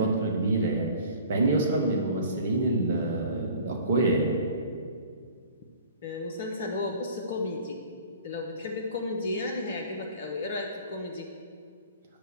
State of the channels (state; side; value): inverted; both; correlation -0.47